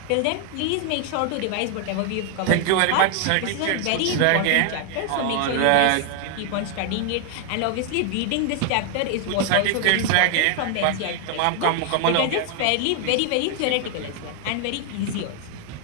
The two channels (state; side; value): different; both; correlation 0.00